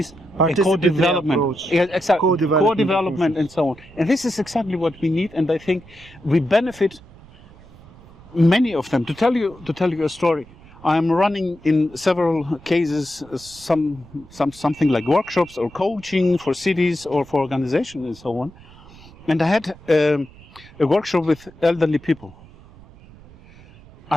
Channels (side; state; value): right; noise; rumble, 22 dB below the sound